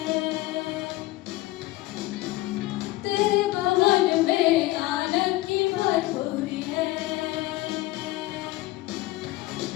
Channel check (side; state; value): right; quieter; 18.2 dB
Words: तेरे भवन में आनंद की भरपूरी है।